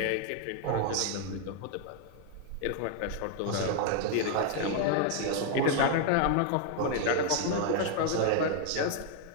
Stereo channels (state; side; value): different; both; correlation 0.00